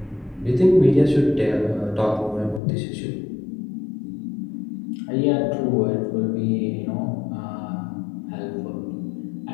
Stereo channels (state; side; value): drops out; right; at 2.6 s